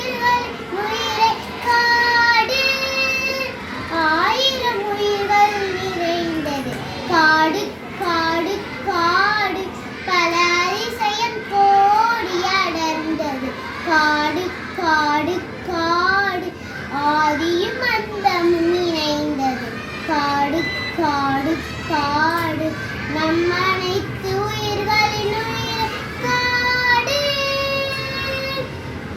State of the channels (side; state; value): both; identical; correlation 1.00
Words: உயிரை காடு. ஆயிரம் உயிர்கள் நிறைந்தது காடு காடு காடு, பல அதிசயம் கோடி அடர்ந்தது காடு காடு காடு, ஆதியும் அந்தமும் இணைந்தது காடு காடு காடு, நம் அனைத்து உயிர்களின் உயிர் காடு.